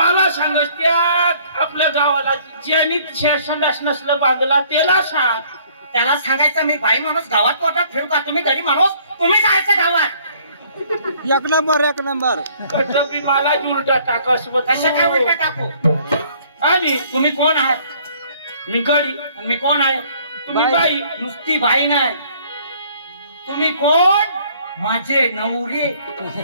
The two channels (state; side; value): inverted; both; correlation -0.59